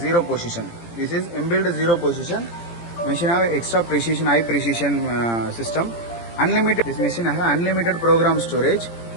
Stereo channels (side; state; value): right; late; 17 ms